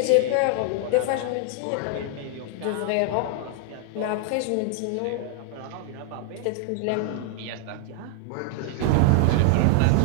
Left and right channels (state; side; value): different; both; correlation 0.00